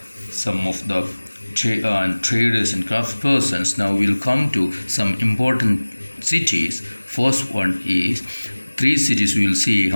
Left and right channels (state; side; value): inverted; both; correlation -1.00